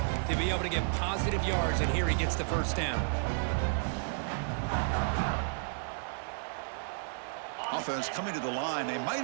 to be able to get positive yards, and here he gets the 1st down. Offense coming to the line. They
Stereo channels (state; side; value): silent; left; 56 dB below the other